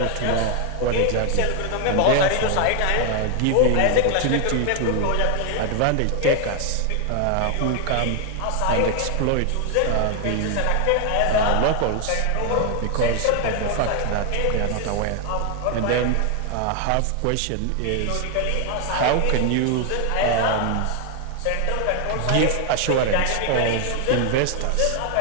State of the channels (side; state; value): both; different; correlation 0.00